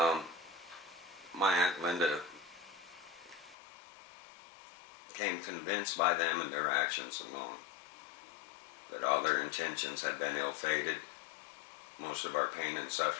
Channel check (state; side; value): drops out; right; at 3.6 s